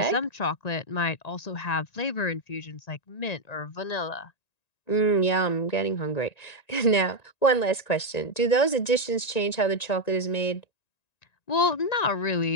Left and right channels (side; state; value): right; late; 1.9 ms